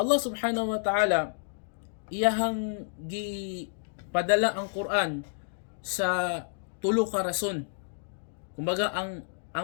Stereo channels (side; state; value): right; silent; digital silence